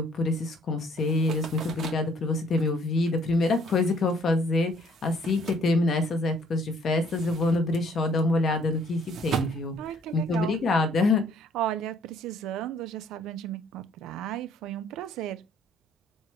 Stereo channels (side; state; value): both; normal; correlation 0.62